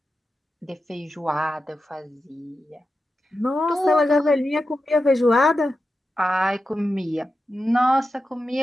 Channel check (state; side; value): normal; both; correlation 0.91